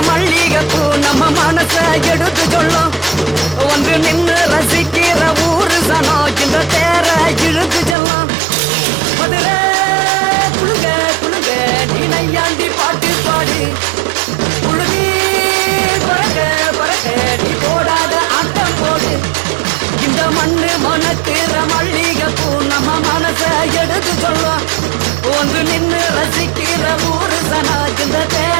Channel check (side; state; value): left; drops out; at 8.0 s